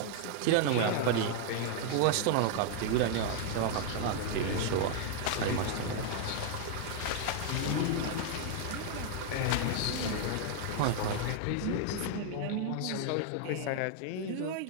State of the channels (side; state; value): both; different; correlation 0.00